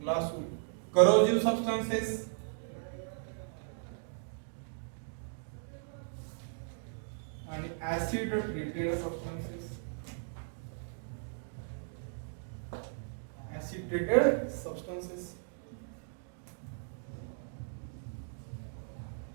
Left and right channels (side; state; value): left; silent; digital silence